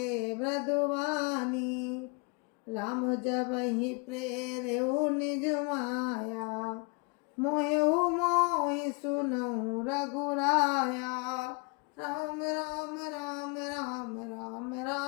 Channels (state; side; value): quieter; right; 32.7 dB